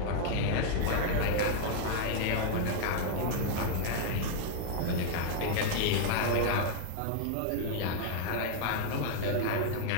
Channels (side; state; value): both; different; correlation 0.00